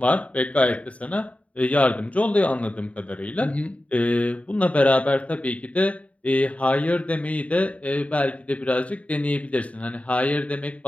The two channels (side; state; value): right; late; 0.066 ms